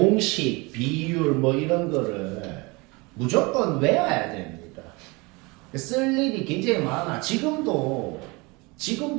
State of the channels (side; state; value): left; quieter; 26.2 dB